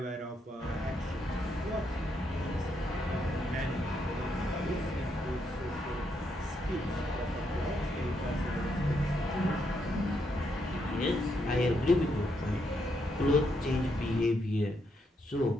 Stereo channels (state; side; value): normal; both; correlation 0.78